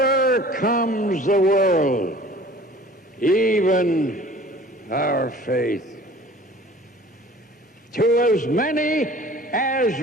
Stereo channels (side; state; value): both; normal; correlation 0.47